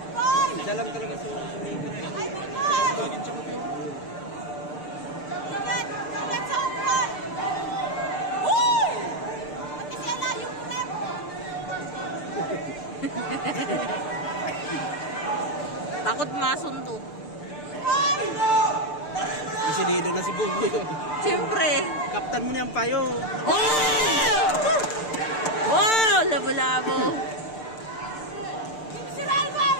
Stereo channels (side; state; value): right; late; 6.7 ms